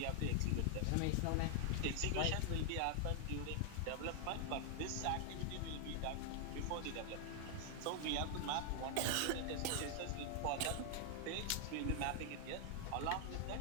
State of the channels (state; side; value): different; both; correlation 0.00